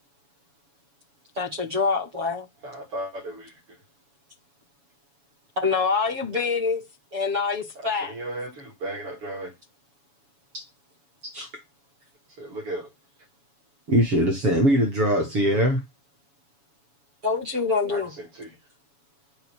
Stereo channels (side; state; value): left; late; 7.1 ms